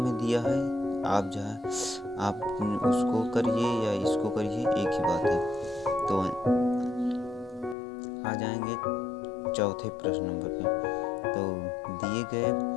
दिया है, आप उसको करिए या इसको करिए, एक ही बात है। तो आ जाएंगे चौथे प्रश्न नंबर पे। तो दिए गए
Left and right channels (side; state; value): right; drops out; at 7.8 s